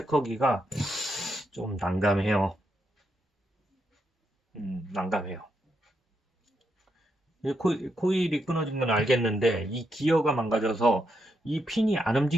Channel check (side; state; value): both; normal; correlation 0.81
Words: 좀 난감해요. 난감해요. 코일이 끊어진 건 알겠는데 이 기어가 망가져서 이 핀이 안